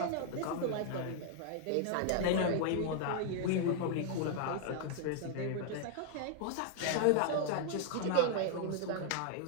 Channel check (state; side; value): different; both; correlation 0.00